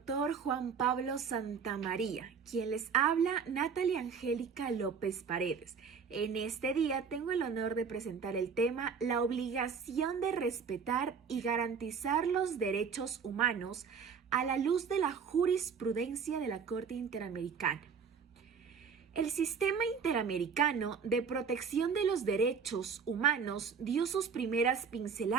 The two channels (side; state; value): left; quieter; 6.2 dB